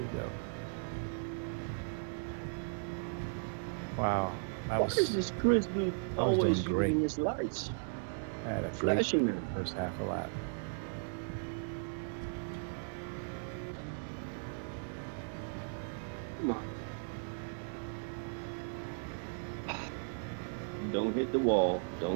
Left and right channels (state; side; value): silent; left; 53 dB below the other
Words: go. Wow. Why is this Chris dude I was always doing great. using his lights? I had a great Flashing them. first half a lap. Come on. Don't hit the wall.